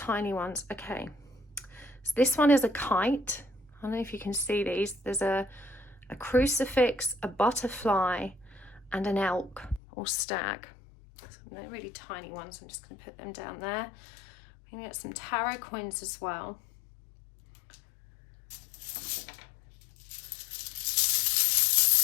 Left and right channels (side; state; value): right; drops out; at 9.8 s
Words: ones. Okay, so this one is a kite. I don't know if you can see these. There's a crucifix, a butterfly, and an elk or stag. So they're really tiny ones. I'm just going to put them down there. We're going to get some tarot coins as well.